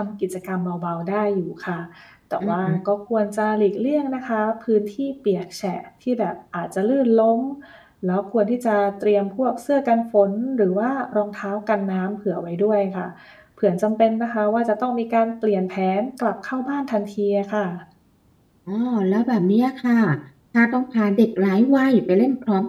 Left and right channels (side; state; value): both; identical; correlation 1.00